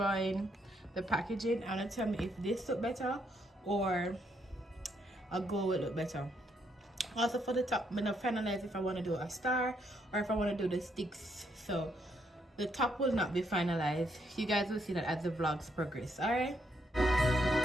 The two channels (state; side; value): normal; both; correlation 0.75